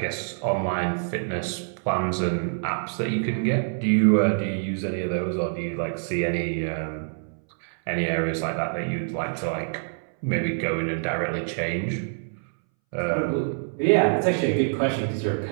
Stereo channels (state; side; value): silent; left; 61 dB below the other